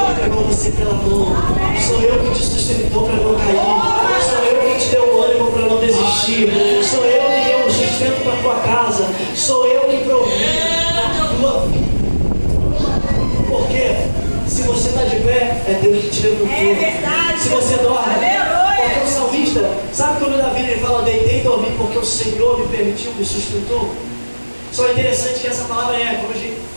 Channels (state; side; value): inverted; both; correlation -1.00